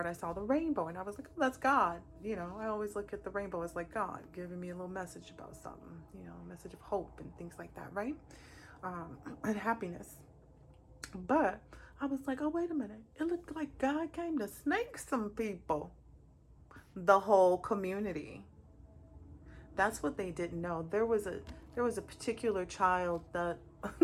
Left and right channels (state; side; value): identical; both; correlation 1.00